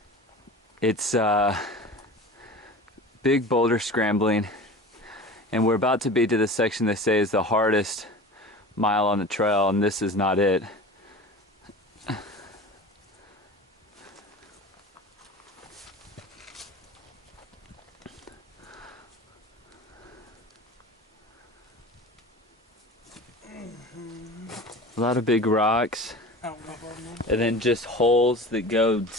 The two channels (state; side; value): normal; both; correlation 0.36